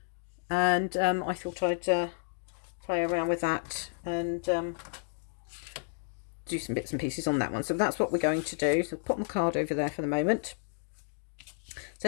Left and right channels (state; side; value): silent; right; digital silence